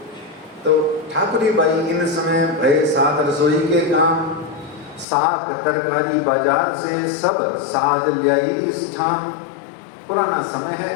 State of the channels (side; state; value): right; drops out; at 5.1 s